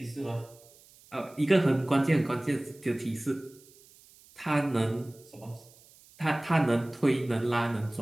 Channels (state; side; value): noise; right; hiss, 26 dB below the sound